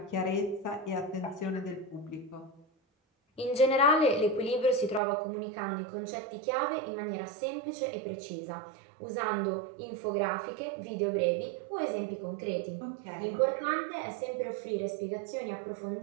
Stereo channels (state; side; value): drops out; left; at 5.0 s